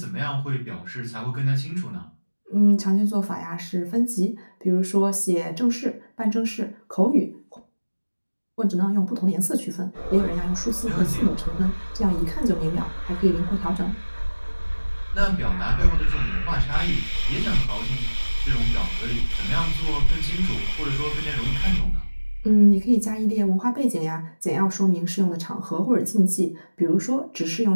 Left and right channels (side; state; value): both; inverted; correlation -1.00